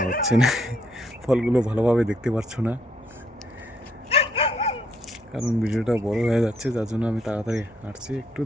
হচ্ছে না, ফলগুলো ভালোভাবে দেখতে পারছো না, কারণ ভিডিওটা বড় হয়ে যাচ্ছে, যার জন্য আমি তাড়াতাড়ি হাঁটছি, একটু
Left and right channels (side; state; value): both; normal; correlation 0.71